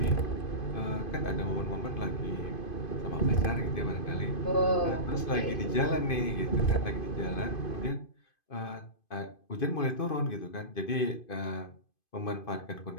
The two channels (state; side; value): late; right; 2.5 ms